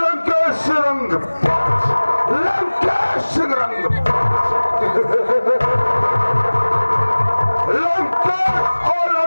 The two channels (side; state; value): both; inverted; correlation -1.00